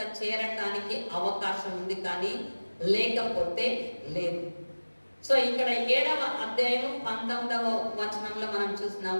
చేరటానికి అవకాశం ఉంది, కానీ లేకపోతే లేదు. సో ఇక్కడ 7వ అధ్యాయం 19వ వచనంలో మనం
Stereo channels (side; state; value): both; inverted; correlation -1.00